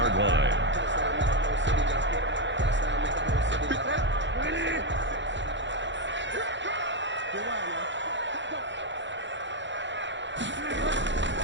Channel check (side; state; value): left; late; 0.53 ms